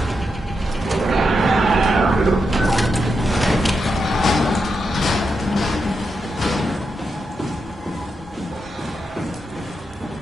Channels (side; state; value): both; normal; correlation 0.85